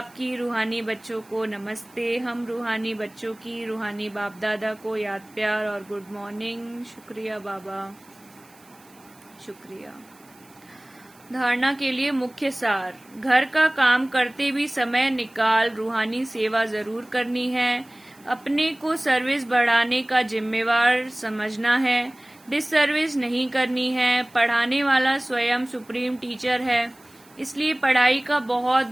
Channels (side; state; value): right; noise; hiss, 27 dB below the sound